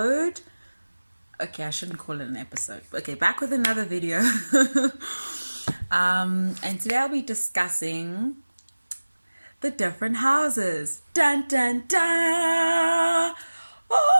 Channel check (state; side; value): inverted; both; correlation -1.00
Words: Okay, I shouldn't call it an episode. Okay, back with another video. And today I'll be discussing the different houses. Dun, dun, dun.